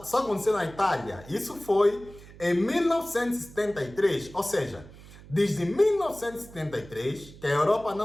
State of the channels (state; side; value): noise; right; hum, 19 dB below the sound